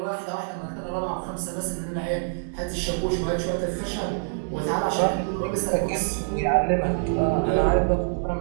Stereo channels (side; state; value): left; silent; digital silence